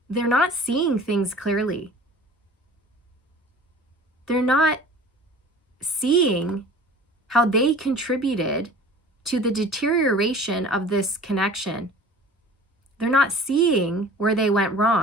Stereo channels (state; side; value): normal; both; correlation 0.44